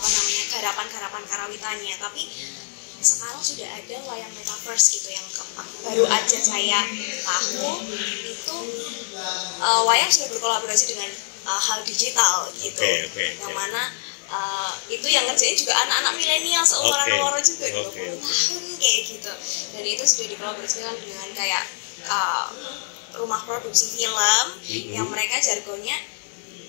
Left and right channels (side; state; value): right; silent; digital silence